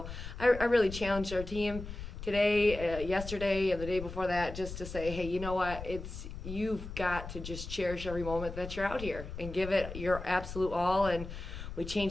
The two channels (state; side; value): noise; left; rumble, 9 dB below the sound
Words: I really challenged our team today, yesterday, and the day before that, just to say, hey, you know what? You've got to just cherish every moment that you're out here and give it your absolute all. And we